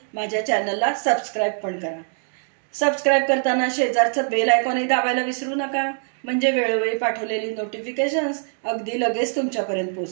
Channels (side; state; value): left; silent; 61 dB below the other